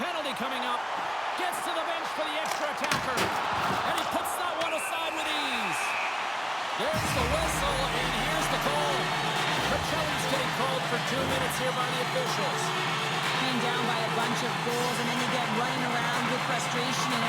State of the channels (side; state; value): both; identical; correlation 1.00